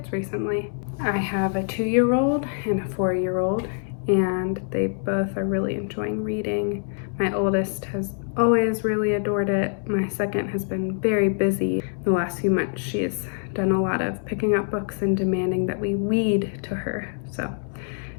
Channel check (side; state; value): right; silent; 62 dB below the other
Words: recently. I have a 2-year-old and a 4-year-old, and they both are really enjoying reading. My oldest has always really adored it. My second has been very busy. The last few months, she's done a lot of picking up books and demanding that we read to her, so